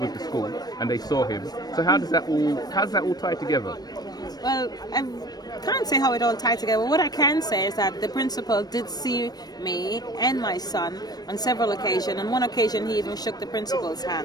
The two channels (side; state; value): right; late; 0.19 ms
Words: the school and they saw him. So how does that all tie together? Well, I can't say how it all tied together. What I can say is that the principal did see me and my son on several occasions. On one occasion, he even shook the principal's